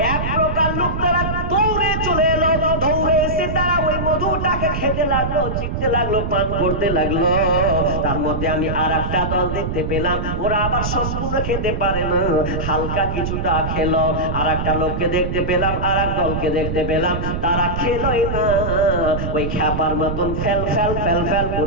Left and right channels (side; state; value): right; noise; rumble, 3 dB below the sound